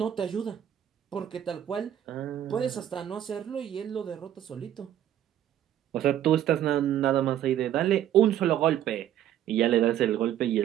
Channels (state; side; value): quieter; left; 11.2 dB